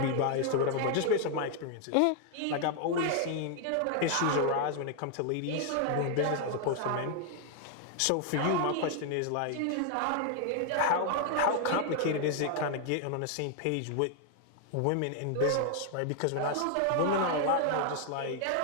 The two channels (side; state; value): both; different; correlation 0.00